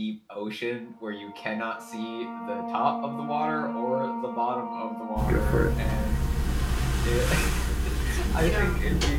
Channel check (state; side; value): identical; both; correlation 1.00